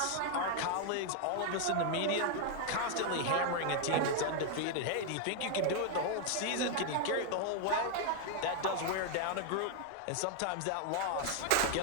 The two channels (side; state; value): both; different; correlation 0.00